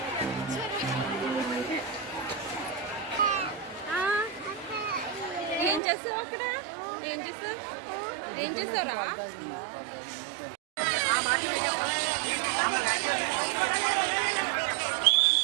ఏం చేస్తావు? అక్కడ ఏం చేస్తావు? ఏం చూసారా?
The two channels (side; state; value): left; drops out; at 5.8 s